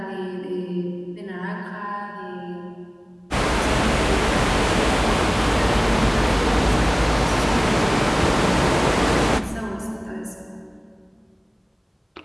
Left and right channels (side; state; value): both; identical; correlation 1.00